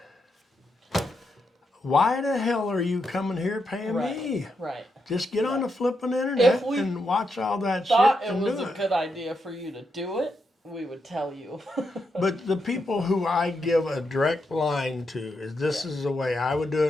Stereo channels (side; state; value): both; normal; correlation 0.83